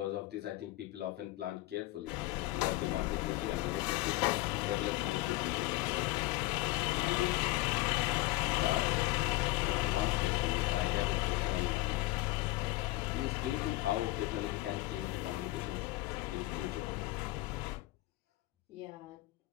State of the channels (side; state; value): right; quieter; 19.0 dB